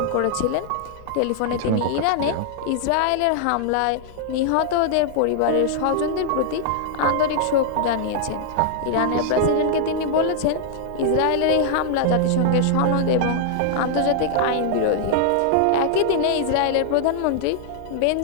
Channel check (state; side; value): different; both; correlation -0.01